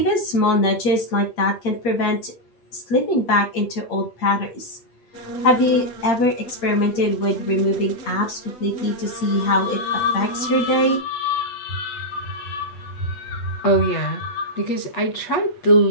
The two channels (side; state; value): right; late; 8.6 ms